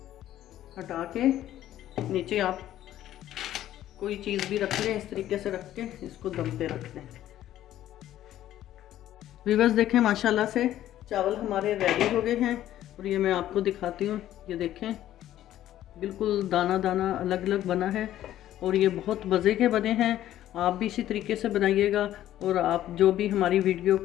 हटा के नीचे आप कोई चीज़ भी रख लें, इस तरीके से रख के इसको दम पे रख दें। व्यूअर्स देखें माशाल्लाह से चावल हमारे रेडी हो गए हैं, और ये मैं आपको दिखाती हूँ। ये देखें बिल्कुल दाना दाना अलग अलग बना है, और ये बहुत मज़े के बने हैं। आप भी इसी तरीके से बनाइएगा। और आप जो भी हमारी वीडियो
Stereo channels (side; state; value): right; quieter; 12.8 dB